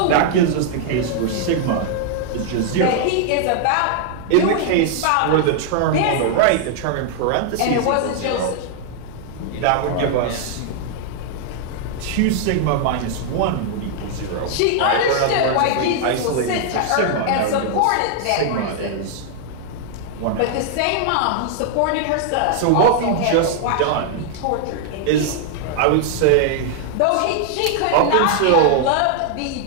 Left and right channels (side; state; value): both; different; correlation -0.01